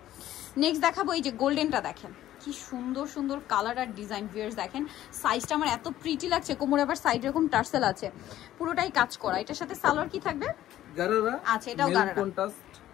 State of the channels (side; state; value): right; quieter; 13.2 dB